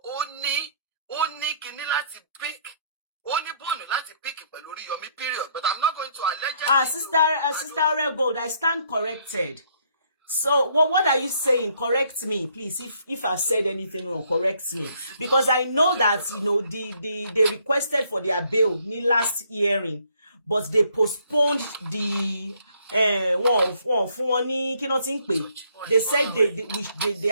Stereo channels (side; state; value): both; inverted; correlation -0.67